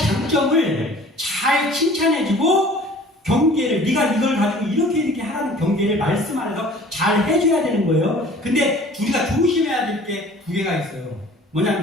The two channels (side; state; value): both; normal; correlation 0.48